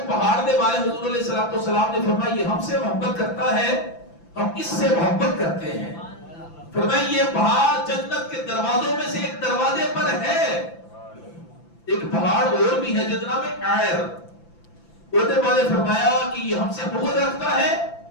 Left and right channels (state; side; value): late; right; 5.9 ms